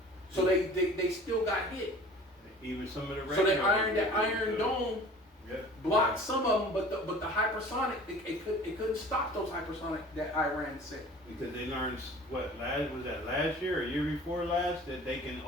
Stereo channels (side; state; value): both; normal; correlation 0.45